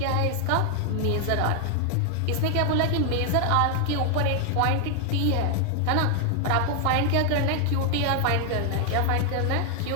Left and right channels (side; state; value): both; different; correlation 0.00